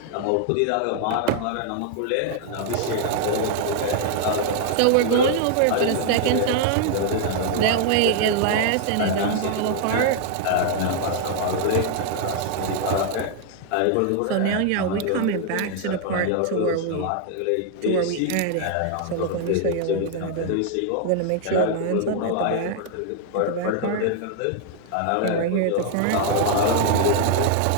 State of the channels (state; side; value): different; both; correlation 0.00